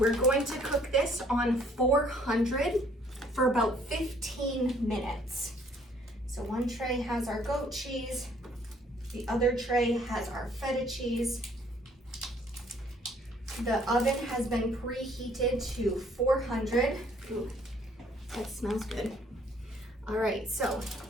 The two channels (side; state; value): both; normal; correlation 0.62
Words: going to cook this on 400 for about 15 minutes. So one tray has our goat cheese, the other tray has our feta cheese. The oven has been preheated to 400. Ooh, that smells good. All right, so